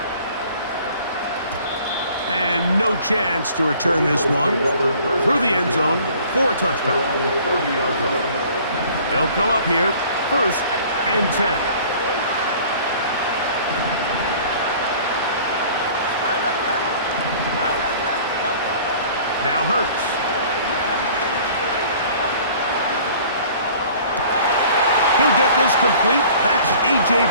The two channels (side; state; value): both; inverted; correlation -0.50